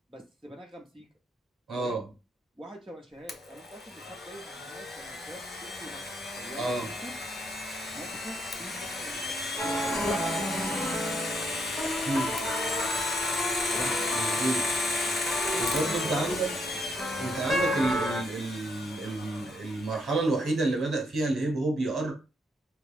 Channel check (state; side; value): normal; both; correlation 0.75